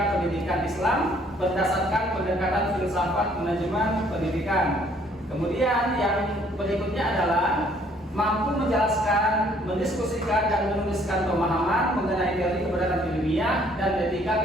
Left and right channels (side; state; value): both; normal; correlation 0.62